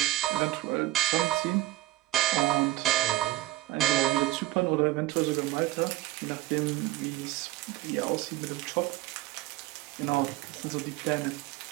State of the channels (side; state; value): left; quieter; 16.6 dB